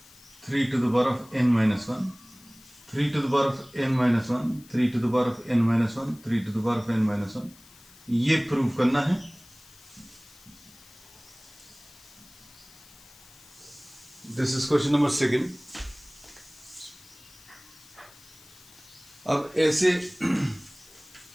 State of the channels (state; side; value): noise; left; hiss, 23 dB below the sound